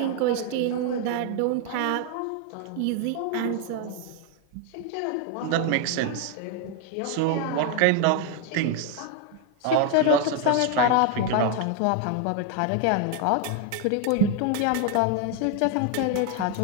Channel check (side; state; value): both; different; correlation 0.01